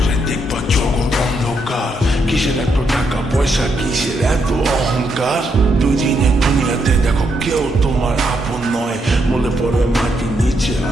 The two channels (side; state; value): both; normal; correlation 0.79